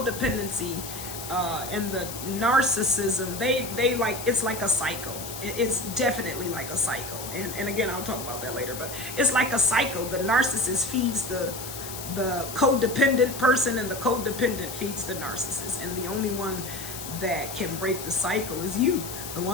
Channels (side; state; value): left; noise; hiss, 9 dB below the sound